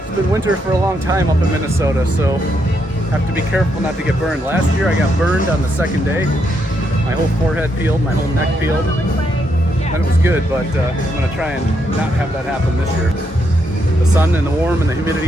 been winter for a long time up in Minnesota, so have to be careful not to get burned. Last year I got burned on the second day. My whole forehead peeled, my whole neck peeled. And it was good, but I'm gonna try and not have that happen this year. The sun and the warm and the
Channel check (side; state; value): both; normal; correlation 0.78